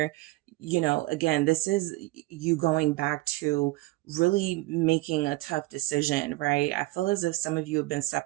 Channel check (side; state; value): left; quieter; 19.9 dB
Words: Again, this is you going back to really making a tough decision, right? I feel as if some of you have been